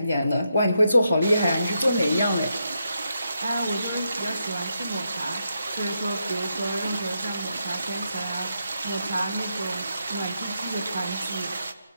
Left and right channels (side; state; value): both; inverted; correlation -0.82